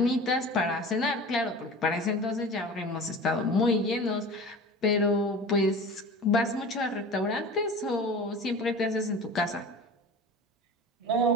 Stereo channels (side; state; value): both; normal; correlation 0.36